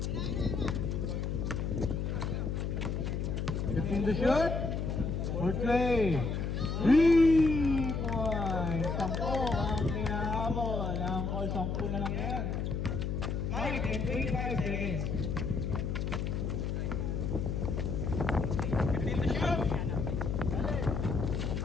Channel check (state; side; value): noise; left; hum, 1 dB below the sound